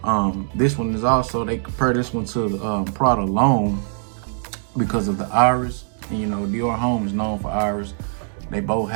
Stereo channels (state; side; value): silent; left; digital silence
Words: This one is also, they compare this one to the Prada L'Homme because of the iris. And you know, Dior Homme is known for iris. They both